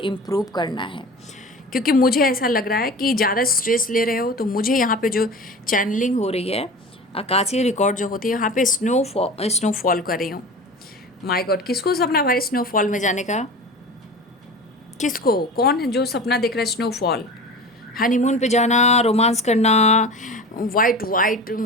करना है, क्योंकि मुझे ऐसा लग रहा है कि ज़्यादा स्ट्रेस ले रहे हो। तो मुझे यहाँ पे जो चैनलिंग हो रही है, आकाशीय रिकॉर्ड जो होती है, यहाँ पे स्नोफॉल कर रही हूँ। माय गॉड, किसको सपना भाई स्नोफॉल में जाने का? किसको, कौन है जो सपना देख रहा है स्नोफॉल, हनीमून पे जाना, रोमांस करना, वाइट वाइट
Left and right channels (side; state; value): both; normal; correlation 0.34